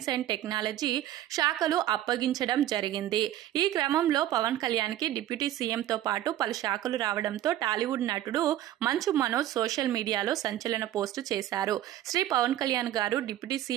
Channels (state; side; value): quieter; left; 13.0 dB